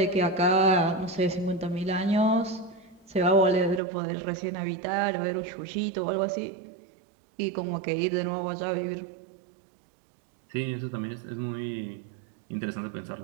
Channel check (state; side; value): drops out; left; at 3.8 s